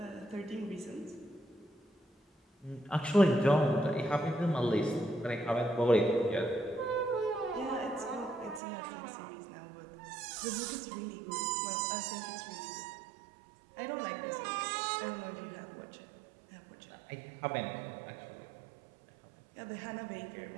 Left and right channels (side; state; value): left; drops out; at 8.6 s